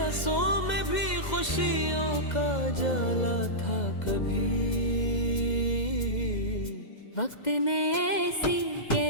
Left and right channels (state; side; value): late; right; 2.0 ms